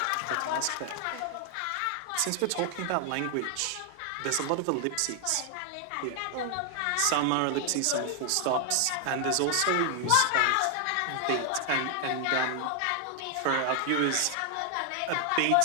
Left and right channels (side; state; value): both; different; correlation 0.00